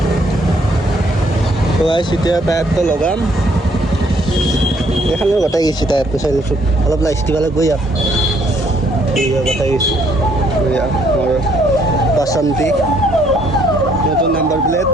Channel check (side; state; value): both; normal; correlation 0.67